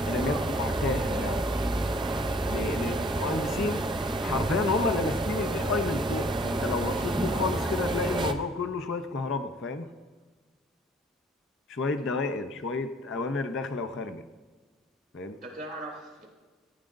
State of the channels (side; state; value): both; normal; correlation 0.57